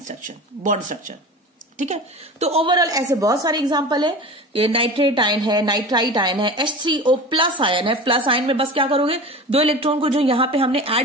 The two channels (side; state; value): both; normal; correlation 0.33